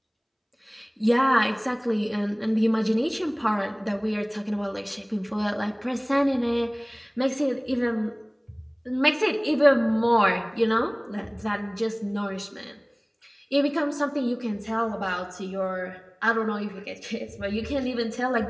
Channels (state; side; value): identical; both; correlation 1.00